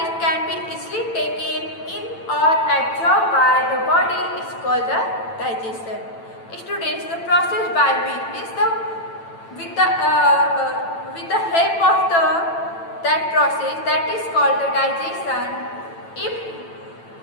can be easily taken in or absorbed by the body is called the digestion. Students, the process by which is with the help of that process that is called the digestion. If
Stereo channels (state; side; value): late; right; 9.0 ms